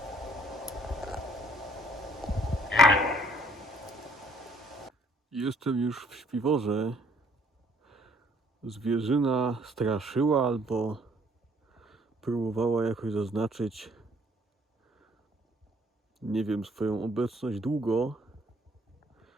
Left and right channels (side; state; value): both; normal; correlation 0.63